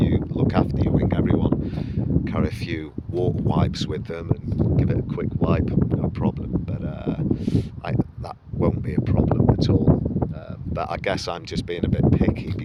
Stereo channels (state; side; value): identical; both; correlation 1.00